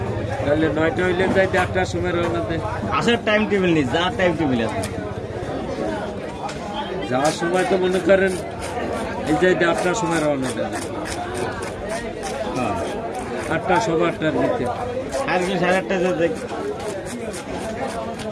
তাহলে 9টা হইলে যাই 8টার সময় রওনা দেয়। আসার টাইম টেবিল নেই, যাওয়ার টাইম টেবিল আছে। যাওয়ার সময় তো মনে করেন এই যে 8টার সময় রওনা দেয়, 8টা 8:15 দিতে, আজকে 8:30 যেতে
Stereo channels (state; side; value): identical; both; correlation 1.00